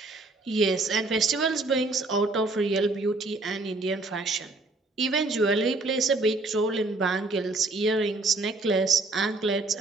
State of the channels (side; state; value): left; quieter; 3.2 dB